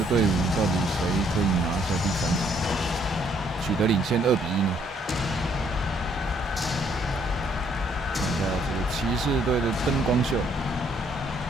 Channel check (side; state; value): both; normal; correlation 0.67